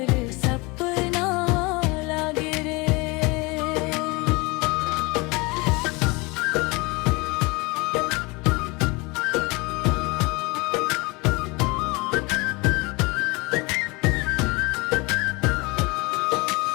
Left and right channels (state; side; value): quieter; right; 26.0 dB